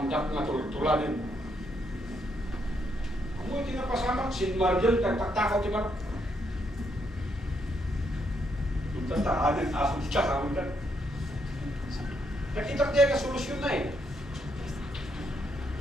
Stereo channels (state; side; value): normal; both; correlation 0.76